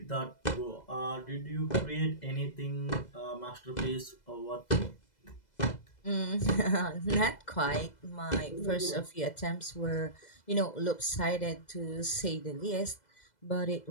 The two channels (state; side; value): late; right; 2.0 ms